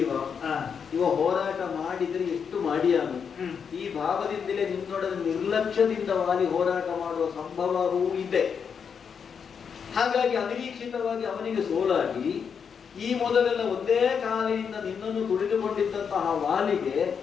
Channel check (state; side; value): quieter; right; 6.7 dB